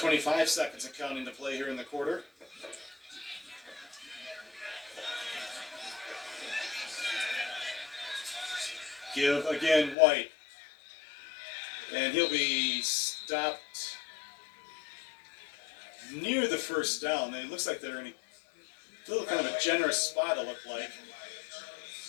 seconds and counting to play here in the quarter. Give again, White. And he'll be stopped near the first down. It looks like they're in a little kind of a generous spot, it looked like.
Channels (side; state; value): right; drops out; at 10.0 s